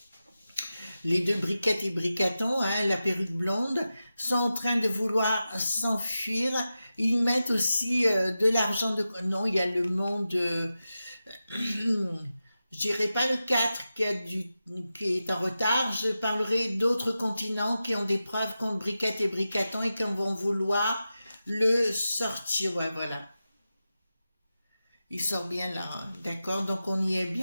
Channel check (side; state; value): both; inverted; correlation -0.92